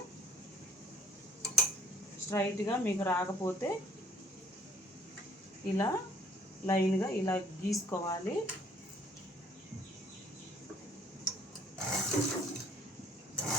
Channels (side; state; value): both; normal; correlation 0.59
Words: స్ట్రైట్గా మీకు రాకపోతే ఇలా లైన్గా ఇలా గీసుకోవాలి.